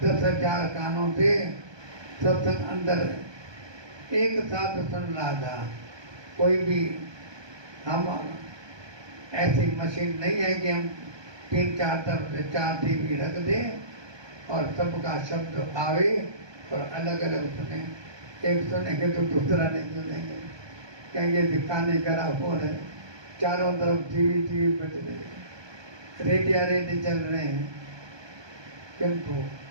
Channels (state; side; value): late; left; 1.2 ms